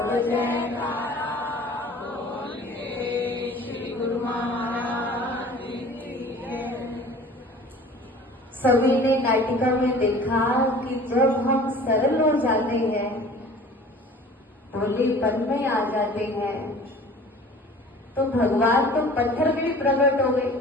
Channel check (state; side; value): normal; both; correlation 0.45